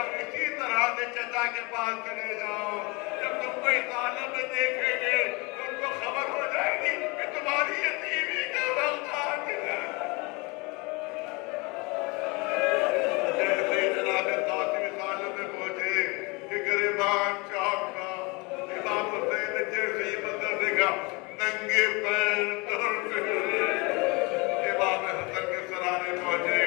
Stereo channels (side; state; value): right; quieter; 27.3 dB